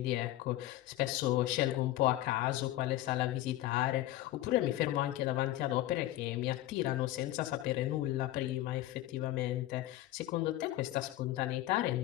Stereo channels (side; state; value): right; quieter; 15.1 dB